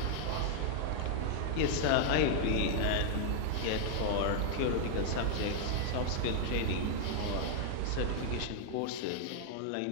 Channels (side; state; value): both; different; correlation 0.00